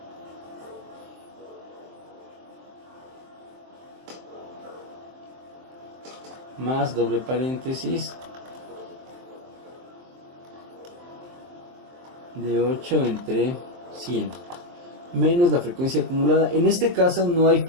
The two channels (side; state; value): left; late; 23 ms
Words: más doble paréntesis de 8 entre 100 menos la frecuencia acumulada. En este caso no hay